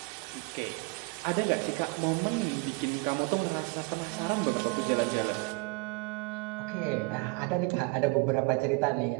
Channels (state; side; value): quieter; left; 28.2 dB